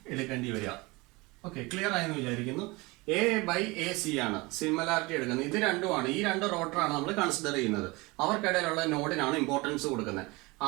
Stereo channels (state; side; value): quieter; left; 24.1 dB